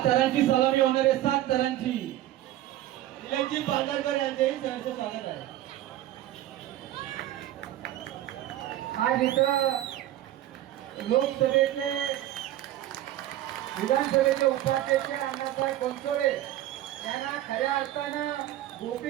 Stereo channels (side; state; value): left; quieter; 13.8 dB